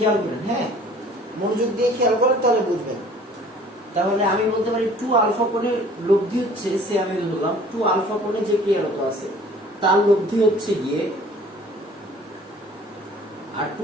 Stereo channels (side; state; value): both; normal; correlation 0.51